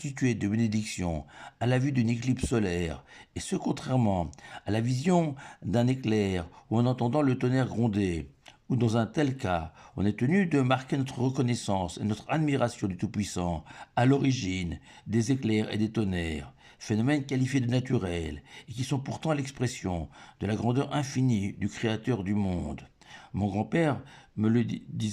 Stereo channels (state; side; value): identical; both; correlation 1.00